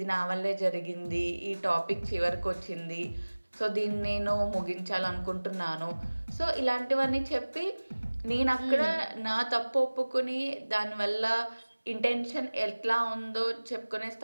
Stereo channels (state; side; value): inverted; both; correlation -1.00